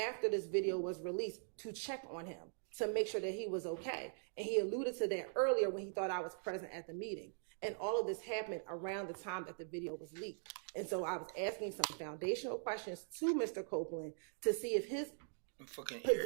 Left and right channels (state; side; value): silent; left; digital silence